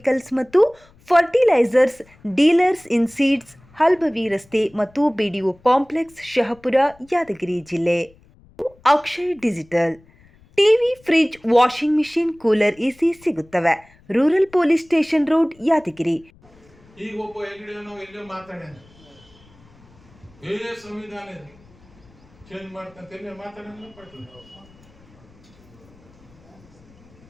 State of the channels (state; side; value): noise; left; rumble, 28 dB below the sound